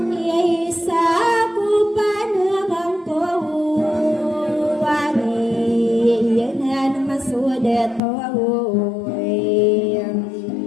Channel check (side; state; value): right; drops out; at 8.0 s